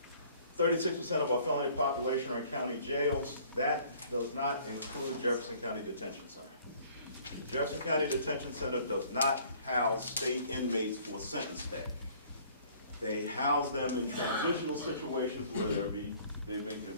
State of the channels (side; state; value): both; inverted; correlation -0.56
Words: 36% of our felony population are in county jails, that does not include Jefferson County Detention Center. Jefferson County Detention Center does not house state inmates for sentence stay. They house them in transitional situations where they've been